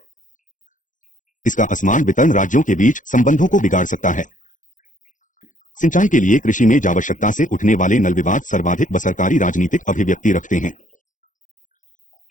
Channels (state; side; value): late; right; 0.37 ms